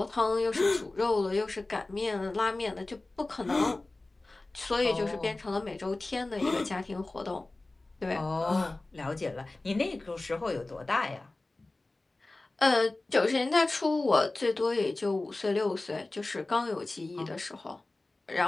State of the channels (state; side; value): quieter; right; 3.0 dB